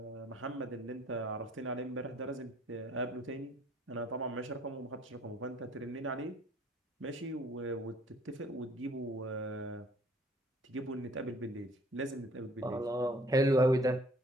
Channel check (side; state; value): both; normal; correlation 0.57